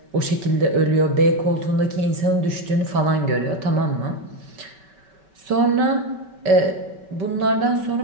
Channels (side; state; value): left; late; 5.2 ms